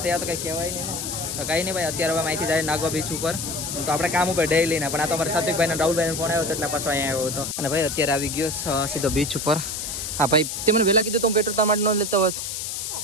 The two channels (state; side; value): noise; left; hiss, 4 dB below the sound